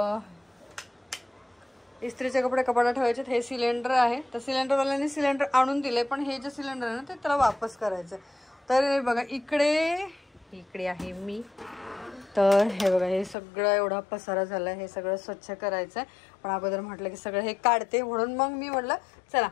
इस्त्रीचे कपडे कपाटात ठेवायचे। हे सिलेंडर आहे, तर सिलेंडरवाल्याने सिलेंडर आणून दिले पण हे जे सिलेंडर आहे ना ते त्याला वापस करायचं। तर बघा इकडे आहे मी। तर हे बघा हे सगळं एवढा पसारा झाला आहे, हे सगळं स्वच्छ करायचं आहे। पण अगोदर म्हटलं की सगळं हे काढते, म्हणून मग मी म्हटलं चला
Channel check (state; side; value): drops out; right; at 13.4 s